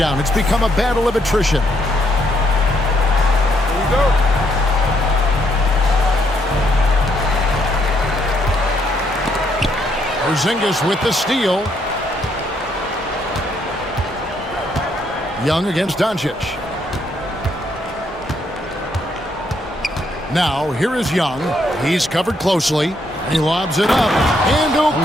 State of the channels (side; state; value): both; normal; correlation 0.73